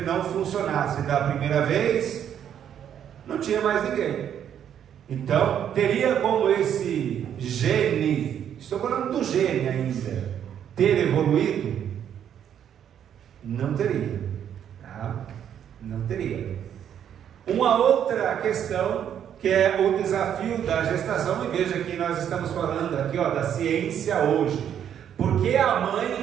não funcionasse da primeira vez, não tinha mais ninguém. Então, teria como esse gene, estou falando do gene ainda, ter evoluído? Não teria. Tá? Não teria. Uma outra questão, que é o desafio da gestação, e veja que nós estamos falando aqui, ó, da ciência hoje. Por que a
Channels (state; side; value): quieter; left; 9.3 dB